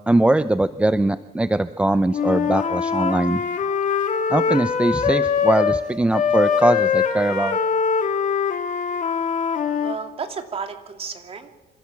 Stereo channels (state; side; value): normal; both; correlation 0.64